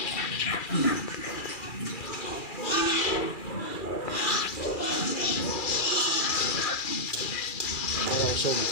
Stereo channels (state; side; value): late; right; 2.4 ms